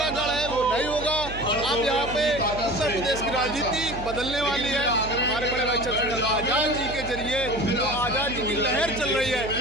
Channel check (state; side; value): noise; right; hum, 11 dB below the sound